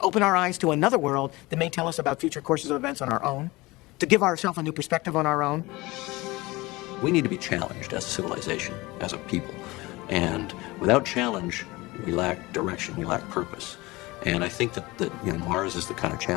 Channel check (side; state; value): right; quieter; 21.6 dB